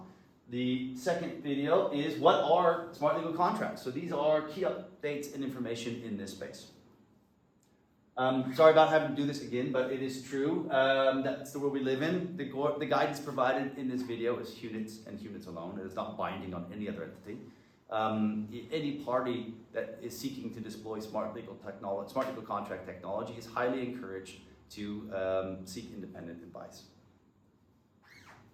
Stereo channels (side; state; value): both; identical; correlation 1.00